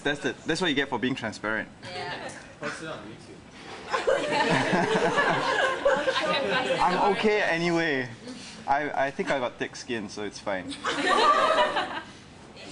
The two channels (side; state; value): both; identical; correlation 1.00